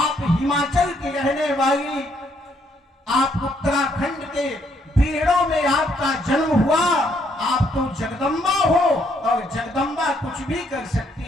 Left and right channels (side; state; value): both; normal; correlation 0.71